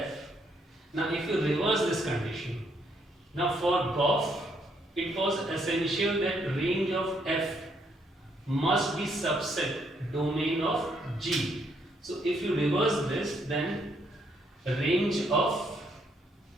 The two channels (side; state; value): both; normal; correlation 0.72